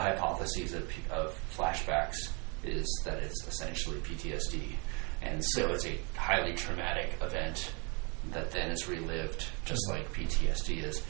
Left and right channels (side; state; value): left; quieter; 32.4 dB